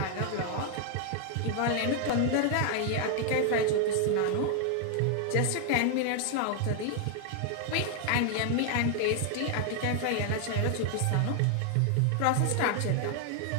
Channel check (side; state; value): both; different; correlation 0.00